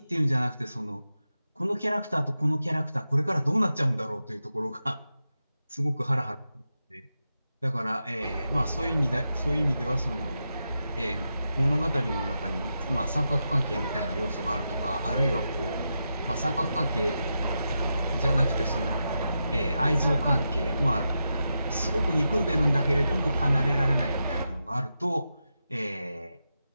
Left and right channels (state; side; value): inverted; both; correlation -0.87